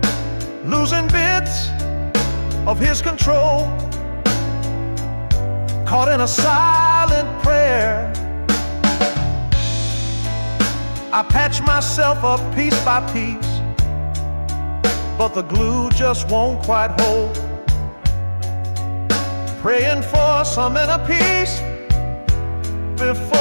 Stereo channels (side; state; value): both; inverted; correlation -1.00